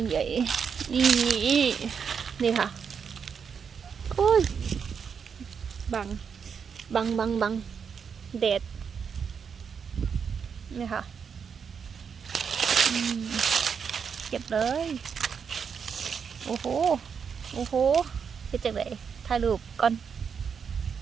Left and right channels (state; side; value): quieter; left; 6.6 dB